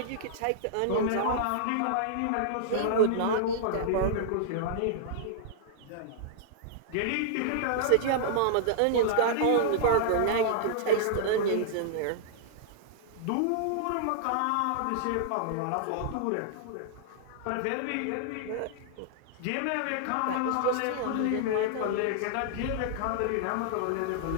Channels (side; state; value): both; different; correlation -0.02